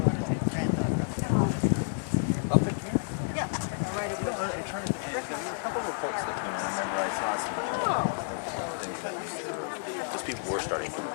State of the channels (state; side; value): silent; right; digital silence